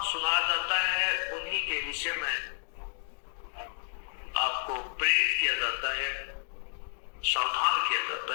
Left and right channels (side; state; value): right; silent; digital silence